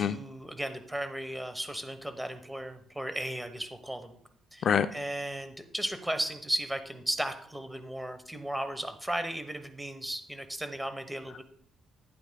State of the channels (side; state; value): both; normal; correlation 0.87